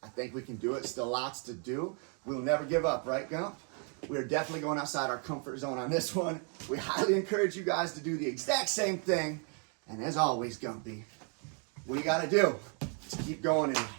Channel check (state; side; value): quieter; left; 39.7 dB